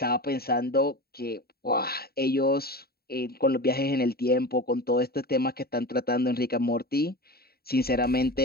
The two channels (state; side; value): late; right; 0.45 ms